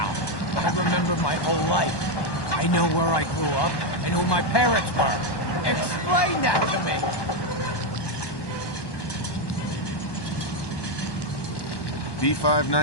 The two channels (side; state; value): right; late; 1.1 ms